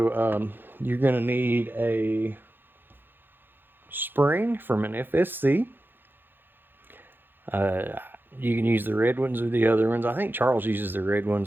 you're going to need a spring from an FSC. You can use the red ones or the other ones. I think Charles uses the red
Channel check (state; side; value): late; left; 0.098 ms